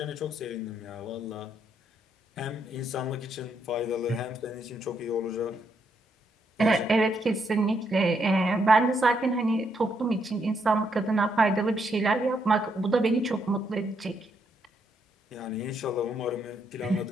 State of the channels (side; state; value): both; normal; correlation 0.76